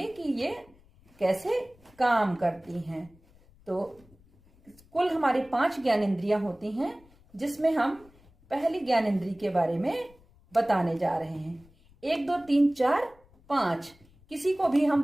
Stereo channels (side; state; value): left; noise; rumble, 29 dB below the sound